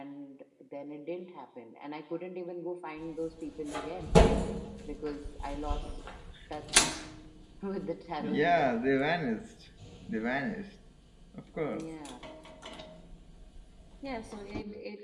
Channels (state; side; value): identical; both; correlation 1.00